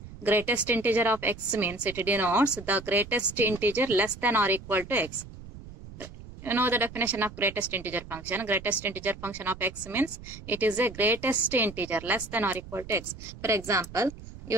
greatest integer of x means it denotes the greatest integer less than or equal to x. You know the definition of greatest integer function. Greatest integer function of x means it is a greatest integer less than or equal to x. For example,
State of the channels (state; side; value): noise; right; rumble, 15 dB below the sound